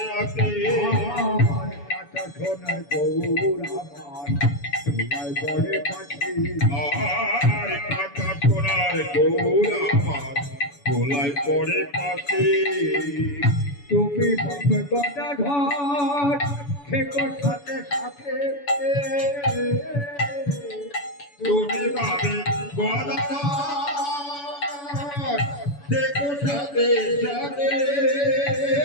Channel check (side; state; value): right; late; 7.0 ms